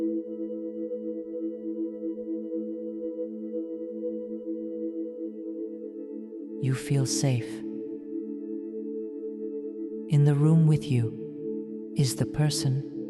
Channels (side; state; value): both; identical; correlation 1.00